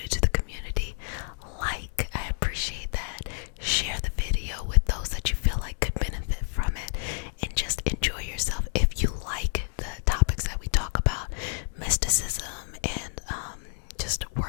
to the community, I appreciate that. Share the video with those that you feel like could benefit from it, and just enjoy yourself. If you like the topics that we talk about, mysticism and just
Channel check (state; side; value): silent; right; 59 dB below the other